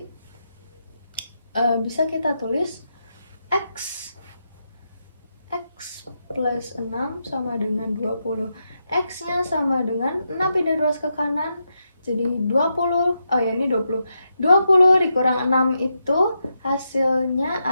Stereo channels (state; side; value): inverted; both; correlation -0.84